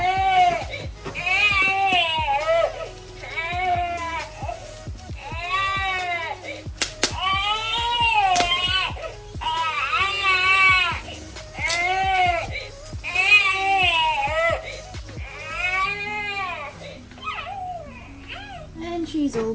And she's all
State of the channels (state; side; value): identical; both; correlation 1.00